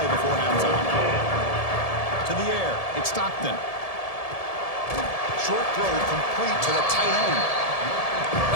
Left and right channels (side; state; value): right; late; 1.7 ms